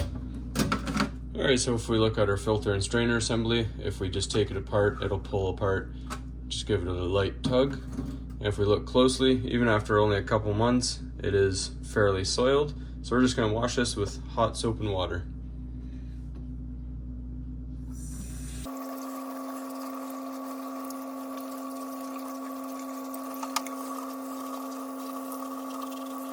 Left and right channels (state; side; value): identical; both; correlation 1.00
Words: Alright, so if we look at our filter and strainer assembly, if we just take it apart, it'll pull apart. Just give it a light tug. And if we look closely, even after only a couple months, it is fairly soiled. So we're just going to wash this with hot soap and water.